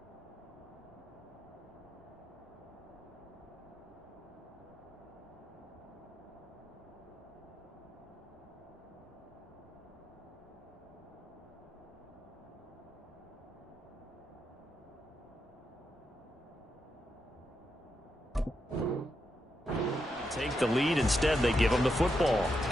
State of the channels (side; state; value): both; normal; correlation 0.84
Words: Take the lead. Instead, they give them the football.